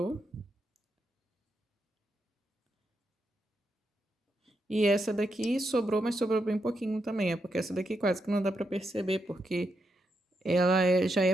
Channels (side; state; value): both; normal; correlation 0.83